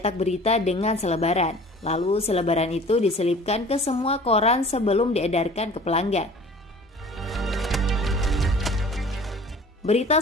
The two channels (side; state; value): both; normal; correlation 0.46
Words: berita dengan selebaran. Lalu selebaran itu diselipkan ke semua koran sebelum diedarkan ke pelanggan. Berita